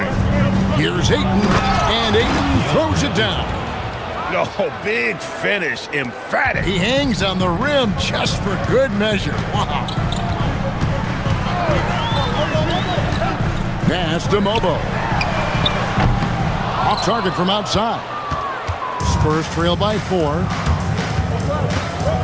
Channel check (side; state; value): both; identical; correlation 1.00